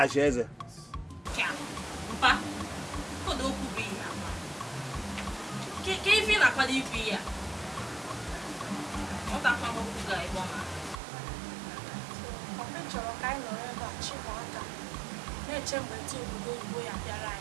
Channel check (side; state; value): left; drops out; at 11.0 s